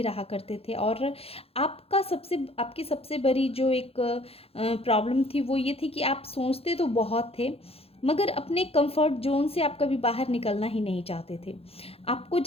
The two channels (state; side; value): late; right; 0.28 ms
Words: रहा करते थे। और आपकी सबसे बड़ी जो एक प्रॉब्लम थी वो ये थी कि आप सोचते तो बहुत थे, मगर अपने कंफर्ट जोन से आप कभी बाहर निकलना ही नहीं चाहते थे। आपको